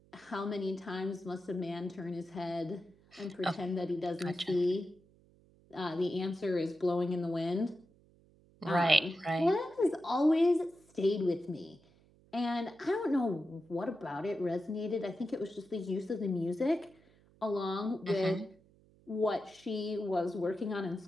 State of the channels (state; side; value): noise; right; hum, 29 dB below the sound